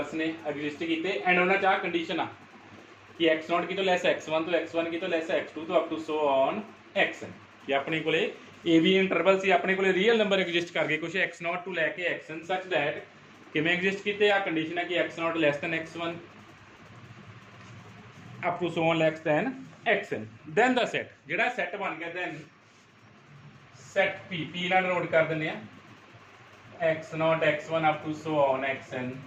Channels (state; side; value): identical; both; correlation 1.00